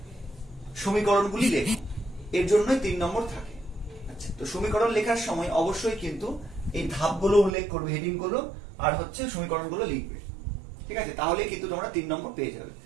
সমীকরণগুলি লেখো। এর জন্যই 3 নম্বর থাকে। আচ্ছা, তো সমীকরণ লেখার সময় অবশ্যই কিন্তু এই ধাপগুলো উল্লেখ করবে, হেডিং গুলো, আর হচ্ছে সমীকরণগুলো লিখবে। ঠিক আছে, তাহলে কিন্তু তোমরা 3 নম্বর পেয়ে যাবে।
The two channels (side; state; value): left; drops out; at 7.6 s